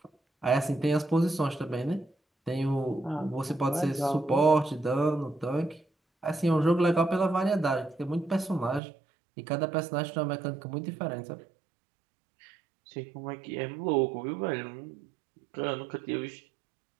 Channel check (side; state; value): left; drops out; at 8.8 s